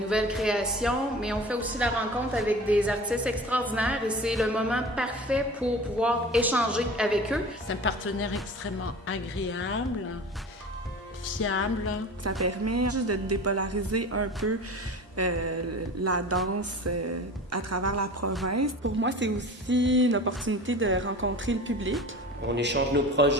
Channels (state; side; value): normal; both; correlation 0.37